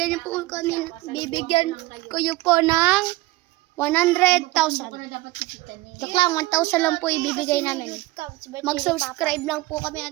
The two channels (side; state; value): left; quieter; 19.8 dB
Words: ko yun po ng 100,000. Joke lang, 1,000 lang po ibibigay namin. Mag-subscribe lang po kami